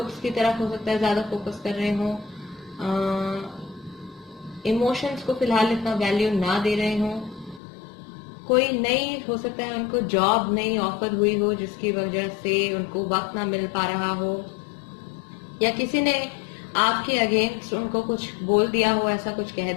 की तरफ हो सकता है ज्यादा फोकस कर रहे हो। इमोशंस को फिलहाल इतना वैल्यू ना दे रहे हो। कोई नई, हो सकता है उनको जॉब नई ऑफर हुई हो जिसकी वजह से उनको वक्त ना मिल पा रहा हो, या किसी ने आपके अगेंस्ट उनको कुछ बोल दिया हो, ऐसा कुछ कह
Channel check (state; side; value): drops out; right; at 7.6 s